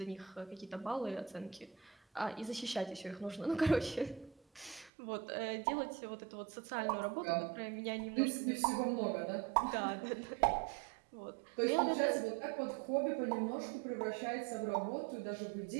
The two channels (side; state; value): left; drops out; at 4.9 s